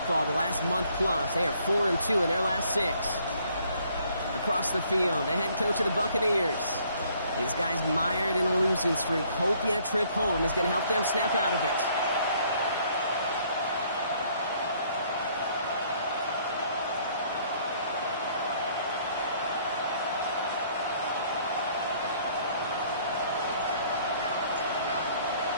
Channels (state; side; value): inverted; both; correlation -0.63